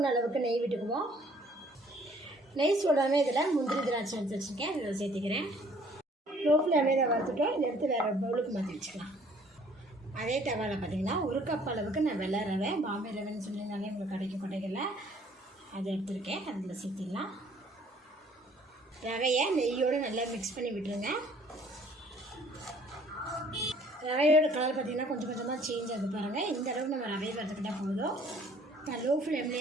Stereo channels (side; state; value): both; normal; correlation 0.58